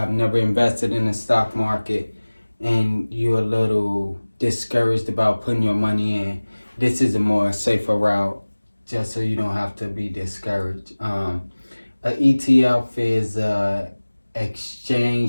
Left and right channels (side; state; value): both; inverted; correlation -1.00